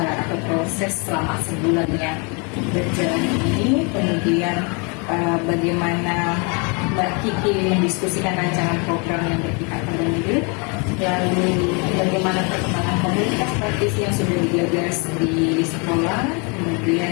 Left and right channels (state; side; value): quieter; right; 33.3 dB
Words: proses selama sebulan yang berjalan ini. Kemudian bagaimana Mbak Kiki mendiskusikan rancangan program yang berpihak pada murid, lalu bagaimana perkembangan komunitas praktisi yang sudah digagas di sekolah,